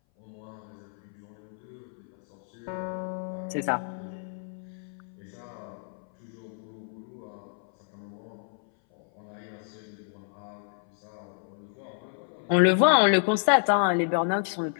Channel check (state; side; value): silent; right; 58 dB below the other